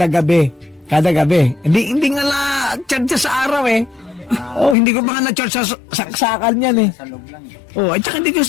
gabi. Kada gabi. Hindi nga na charge sa araw eh. Hindi ko pa nga na-charge sa saksakan yan eh. Sa loob lang. At saka hindi ko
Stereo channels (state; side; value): drops out; right; at 4.8 s